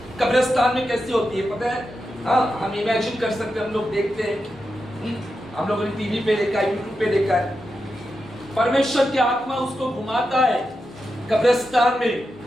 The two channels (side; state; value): both; normal; correlation 0.88